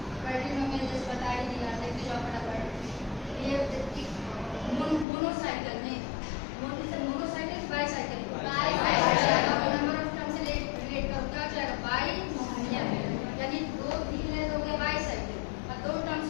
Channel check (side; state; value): right; drops out; at 5.1 s